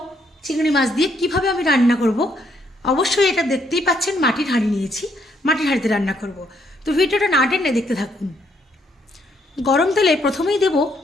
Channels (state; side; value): normal; both; correlation 0.72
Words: চিংড়ি মাছ দিয়ে কিভাবে আমি রান্না করব, অবশ্যই এটা দেখতেই পাচ্ছেন মাটির হাঁড়ি নিয়েছি, মাটির হাঁড়িতে রান্না করব। তো ভিডিওটা না টেনে দেখতে থাকুন। গরম তেলে প্রথমেই দেব